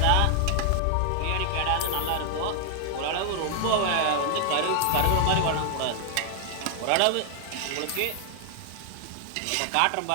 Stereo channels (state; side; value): different; both; correlation 0.00